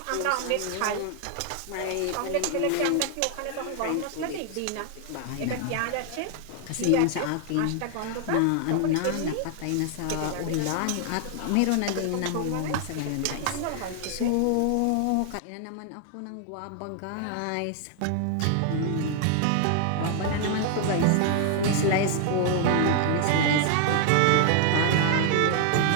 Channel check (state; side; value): different; both; correlation 0.00